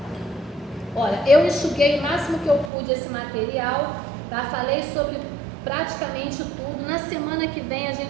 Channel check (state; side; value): drops out; left; at 2.7 s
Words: Olha, eu enxuguei o máximo que eu pude esse material, tá? Falei sobre praticamente tudo. Na semana que vem a